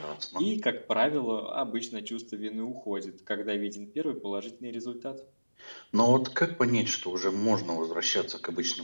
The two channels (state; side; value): inverted; both; correlation -1.00